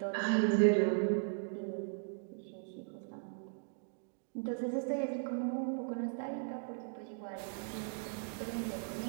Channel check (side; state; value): left; silent; digital silence